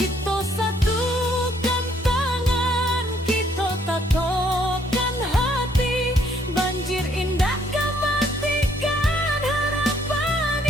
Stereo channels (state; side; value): normal; both; correlation 0.67